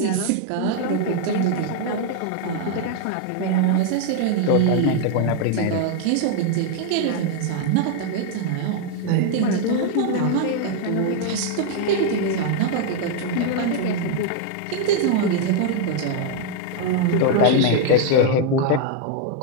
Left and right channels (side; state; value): both; different; correlation 0.00